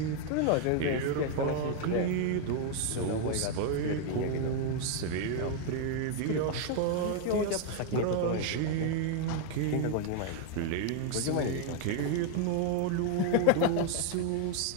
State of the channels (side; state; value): both; different; correlation 0.00